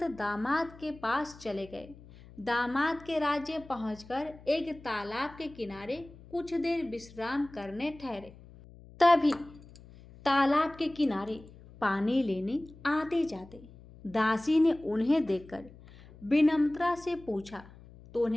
दामाद के पास चले गए। दामाद के राज्य पहुंचकर एक तालाब के किनारे कुछ देर विश्राम करने ठहरे। तभी तालाब के किनारे पानी लेने आते जाते दासी ने उन्हें देखकर विनम्रता से पूछा, तो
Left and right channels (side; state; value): left; noise; hum, 21 dB below the sound